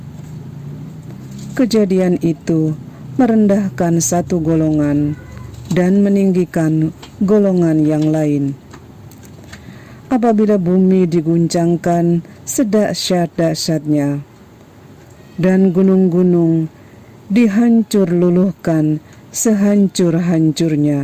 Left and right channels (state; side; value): identical; both; correlation 1.00